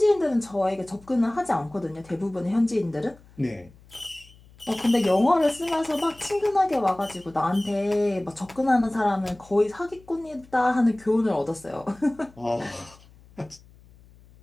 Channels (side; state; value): left; noise; hum, 25 dB below the sound